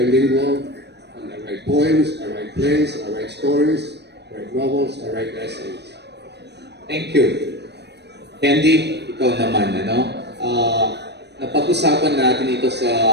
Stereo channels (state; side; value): late; left; 0.49 ms